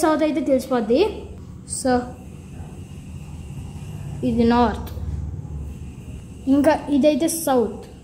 అయితే తెలిసిపోద్ది. సో ఇది నార్త్, ఇంకా ఇదైతే సౌత్.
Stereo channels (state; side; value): identical; both; correlation 1.00